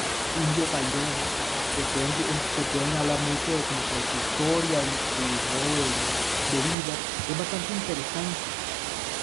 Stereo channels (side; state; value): left; drops out; at 6.8 s